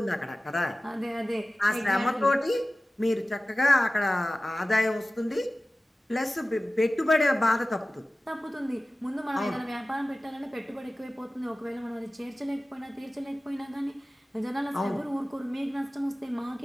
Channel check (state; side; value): normal; both; correlation 0.96